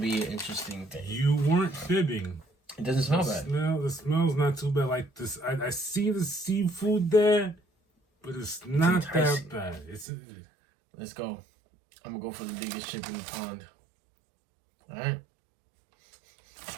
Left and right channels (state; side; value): drops out; left; at 10.1 s